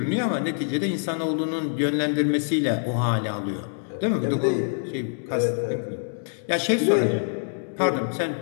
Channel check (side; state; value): right; silent; digital silence